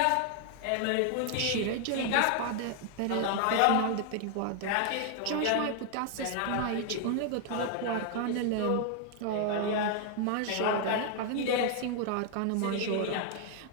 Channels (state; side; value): different; both; correlation 0.00